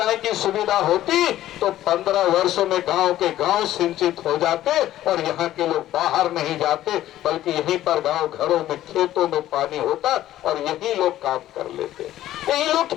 की सुविधा होती तो 15 वर्षों में गांव के गांव सिंचित हो जाते और यहाँ के लोग बाहर नहीं जाते, बल्कि यहीं पर गांव घरों में खेतों में पानी होता और यही लोग काम कर लेते, यही लोग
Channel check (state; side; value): quieter; right; 13.6 dB